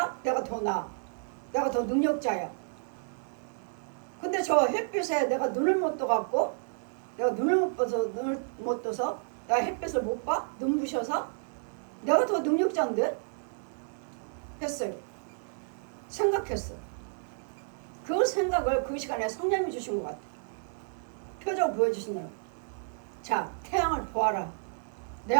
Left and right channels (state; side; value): silent; left; digital silence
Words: 내가 더 나아. 내가 더 능력자야. 근데 저 햇빛에 내가 눈을 못 떠갖고 내가 눈을 못 떠서 내가 햇빛을 못 봐? 눈부셔서 내가 더 능력자인데? 했어요. 생각했어. 그 생각을 그 시간에 성령님이 주신 것 같아. 표정 보여주시나요? 자, 태양을 보아라. 내